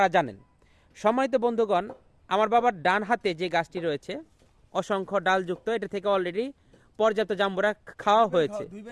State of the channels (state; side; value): identical; both; correlation 1.00